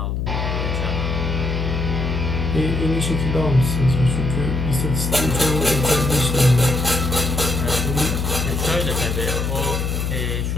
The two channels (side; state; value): left; noise; hum, 1 dB below the sound